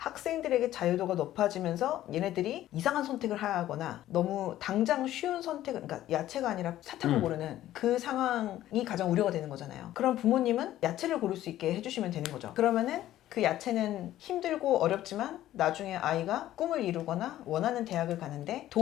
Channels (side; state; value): right; quieter; 13.6 dB